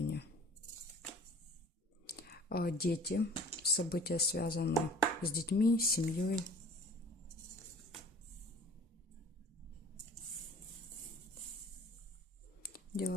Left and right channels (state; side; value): normal; both; correlation 0.46